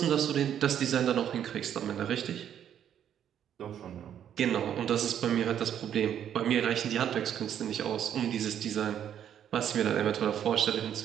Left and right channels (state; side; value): quieter; left; 9.7 dB